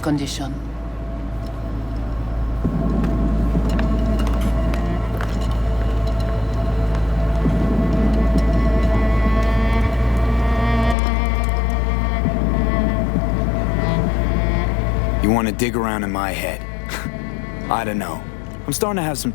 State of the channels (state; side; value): drops out; right; at 11.0 s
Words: You want to dig around in my head? I don't know. I'm starting to have some